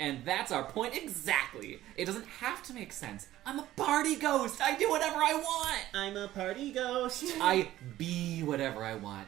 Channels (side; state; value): left; quieter; 14.4 dB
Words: that's our point exactly. It doesn't have to make sense. I'm a party ghost. I do whatever I want. I'm a party ghost. I be whatever I want.